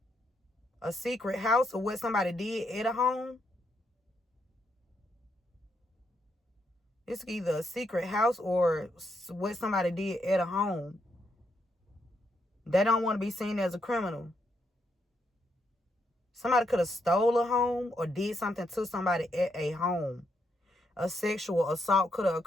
A secret house or what somebody did at a home. It's either a secret house or what somebody did at a home. They don't want to be seen as a criminal. Somebody could have stole a home or did something to somebody at a home. A sexual assault could have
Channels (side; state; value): both; normal; correlation 0.78